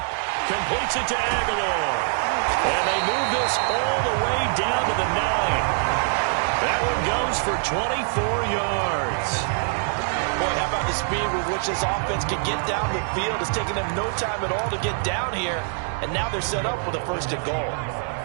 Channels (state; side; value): silent; left; 60 dB below the other